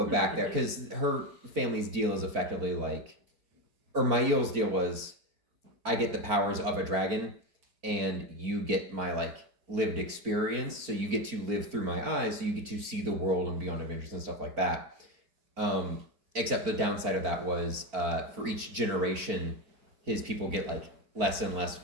go back there, because her family's deal is effectively like, or Mail's deal was, I get the powers of a dragon, and you get my like lived experience, so you get to live through my eyes, so you get to see the world and be on adventures and stuff like that. Except the downside of that was, for each generation, his people get like less and less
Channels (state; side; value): late; left; 4.4 ms